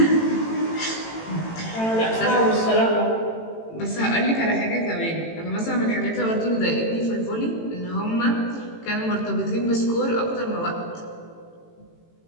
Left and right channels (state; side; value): late; right; 18 ms